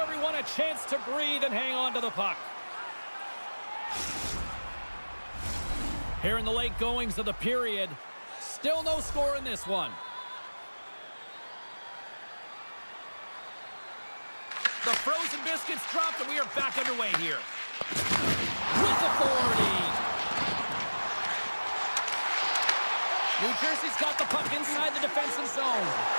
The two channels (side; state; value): both; inverted; correlation -1.00